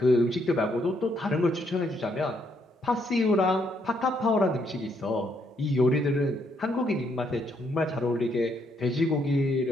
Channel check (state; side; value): normal; both; correlation 0.73